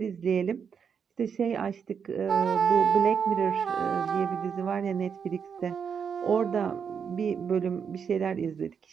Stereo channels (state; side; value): quieter; left; 6.8 dB